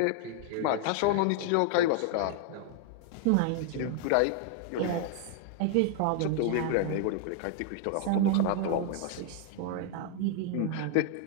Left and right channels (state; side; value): different; both; correlation 0.00